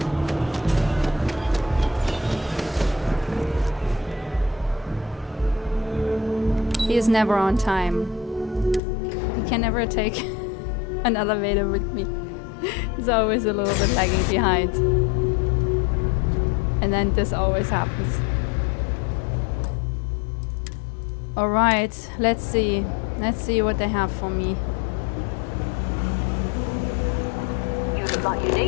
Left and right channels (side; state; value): right; drops out; at 8.8 s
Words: He is never on time. He can never take an elevator with me. He's always a little bit lagging behind. And then this always happens. Alright, let's see. Let's see what they have for me. You look like you